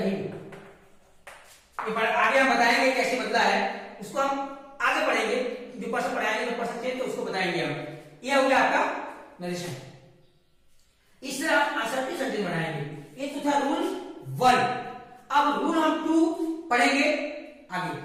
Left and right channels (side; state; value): both; identical; correlation 1.00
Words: आगे हम बताएंगे कैसे बदला है, उसको हम आगे पढ़ेंगे, जो पर्सन पढ़ाएंगे जो पर्सन चेंज तो उसको बताएंगे हम। यह हो गया आपका नरेशन। इस तरह आप असर्टिव सेंटेंस बनाएंगे। ये तो था रूल 1। अब रूल हम 2 पढ़ेंगे आगे।